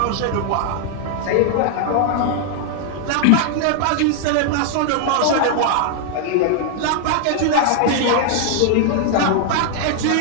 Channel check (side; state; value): both; different; correlation 0.00